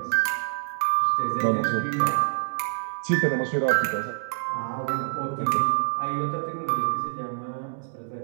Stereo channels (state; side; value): silent; left; 61 dB below the other